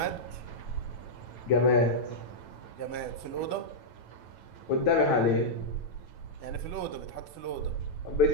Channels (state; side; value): late; right; 9.1 ms